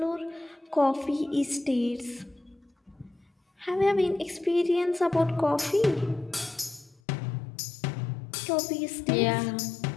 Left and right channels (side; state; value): right; drops out; at 7.0 s